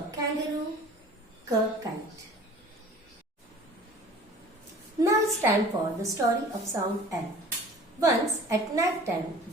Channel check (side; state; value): both; normal; correlation 0.46